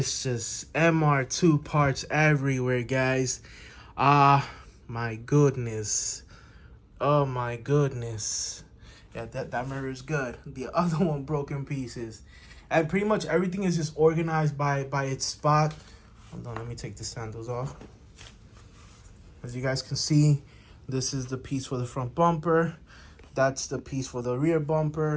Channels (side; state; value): both; identical; correlation 1.00